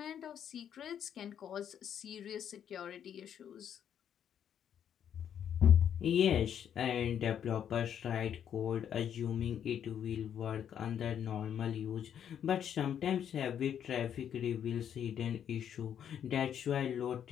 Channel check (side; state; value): right; quieter; 9.1 dB